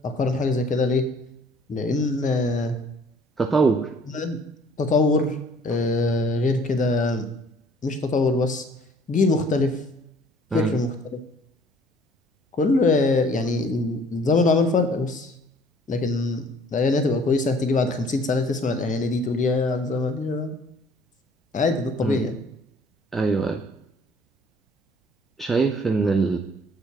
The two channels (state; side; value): normal; both; correlation 0.56